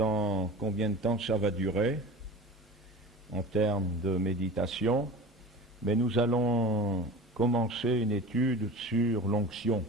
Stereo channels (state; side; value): normal; both; correlation 0.35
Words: combien de temps ça va durer en termes de méditation, mais nous allons commencer une étude sur l'onction.